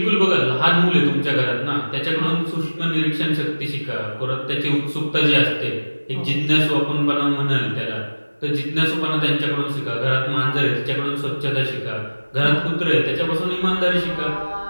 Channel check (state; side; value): inverted; both; correlation -1.00